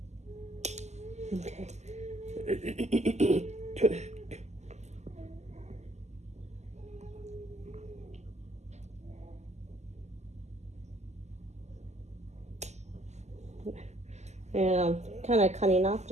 Okay. And I'm kind of cutting off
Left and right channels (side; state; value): left; late; 0.33 ms